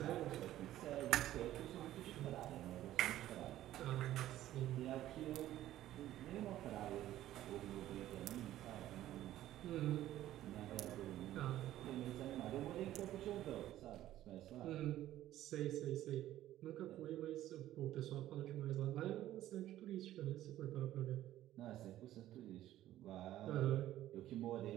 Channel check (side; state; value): left; quieter; 13.7 dB